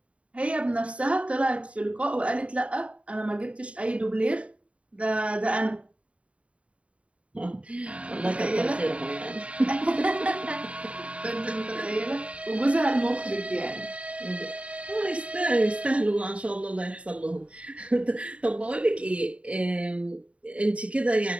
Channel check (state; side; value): late; left; 0.063 ms